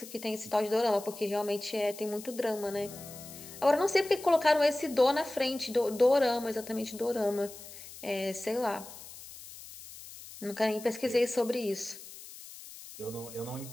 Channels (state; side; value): noise; left; hiss, 15 dB below the sound